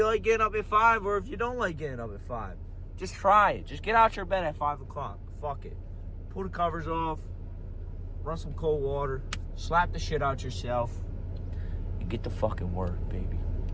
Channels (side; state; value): both; identical; correlation 1.00